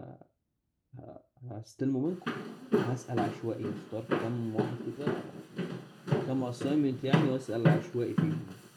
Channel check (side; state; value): both; identical; correlation 1.00